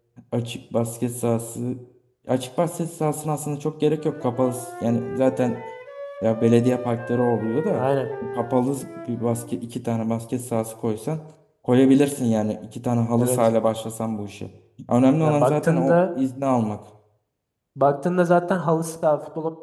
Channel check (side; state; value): both; identical; correlation 1.00